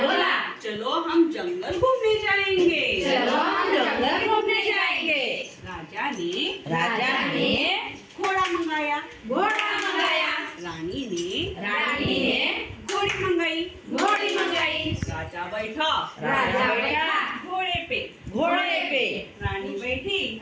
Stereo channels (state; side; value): identical; both; correlation 1.00